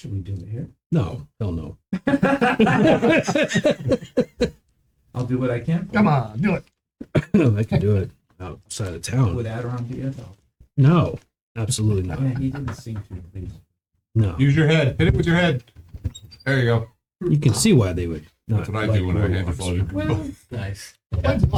we do it here? No, hell no. I'll do what I can. Come on, do it. I can do it outside of town. Would Adiron be it though? No, absolutely Yeah, not. he didn't seem to at least. No. Use your head. Hit it with your head. There you go. You can see why they would. That's what I do when I hand the phone. Well, Nice.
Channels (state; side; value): identical; both; correlation 1.00